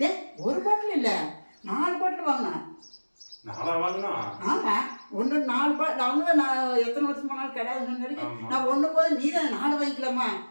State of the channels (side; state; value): both; inverted; correlation -1.00